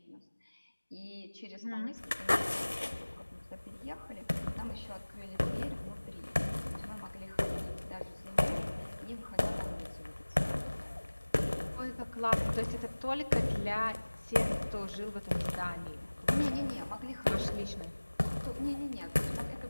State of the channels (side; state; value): both; inverted; correlation -1.00